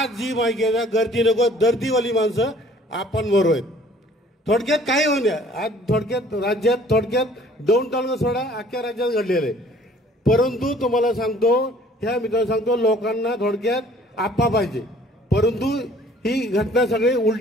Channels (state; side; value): normal; both; correlation 0.55